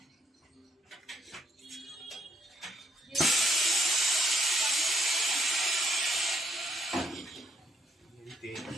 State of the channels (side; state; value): both; normal; correlation 0.74